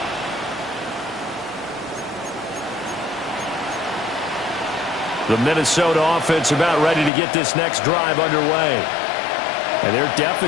The Minnesota offense about ready to get this next drive underway. And their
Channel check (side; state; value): right; drops out; at 7.1 s